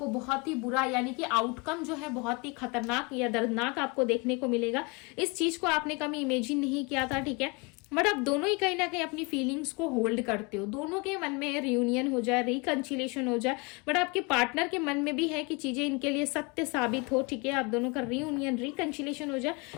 बहुत ही बुरा, यानी कि आउटकम जो है बहुत ही खतरनाक या दर्दनाक आपको देखने को मिलेगा। इस चीज को आपने कभी इमेजिन नहीं किया था, ठीक है। बट आप दोनों ही कहीं ना कहीं अपनी फीलिंग्स को होल्ड करते हो, दोनों के मन में रियूनियन हो जाए, रिकंसिलिएशन हो जाए, बट आपके पार्टनर के मन में भी है कि चीजें इनके लिए सत्य साबित हो, ठीक है। आप दोनों का रियूनियन रिकंसिलिएशन हो जाए,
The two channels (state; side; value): quieter; right; 28.7 dB